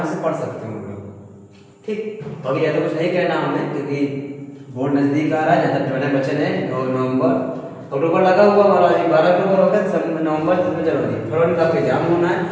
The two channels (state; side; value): identical; both; correlation 1.00